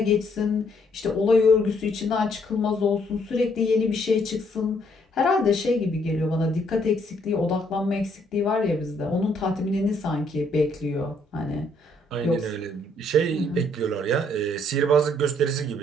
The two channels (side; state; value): both; normal; correlation 0.68